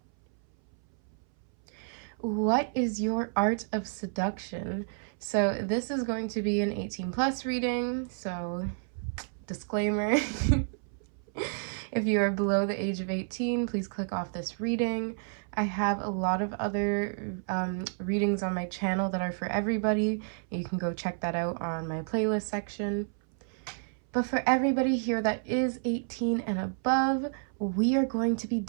what is your art of seduction. So this is going to be an 18+ reading, so disclaimer. If you are below the age of 18, please click off this reading. I have a lot of other readings on my channel that are for everybody. You can go check that out on my playlist section. But for everybody here that is 18 and above, we are going to be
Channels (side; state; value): left; silent; 58 dB below the other